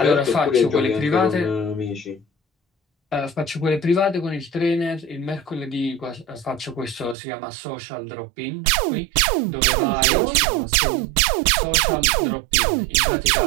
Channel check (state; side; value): drops out; left; at 7.2 s